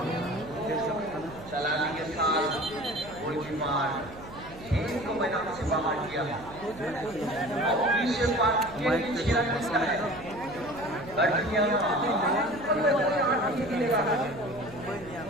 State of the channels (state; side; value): noise; right; hum, 16 dB below the sound